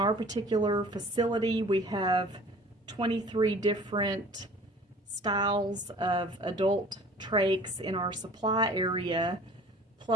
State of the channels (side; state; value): both; normal; correlation 0.47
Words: particular facility, we have 23 different styles of adult trachs in our supply area,